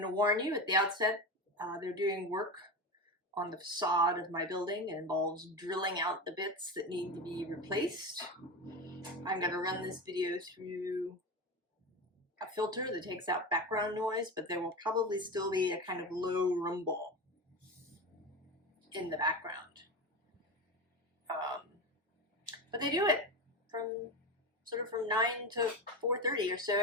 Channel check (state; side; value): normal; both; correlation 0.22